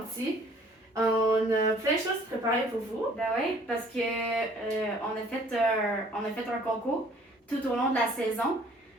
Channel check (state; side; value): normal; both; correlation 0.56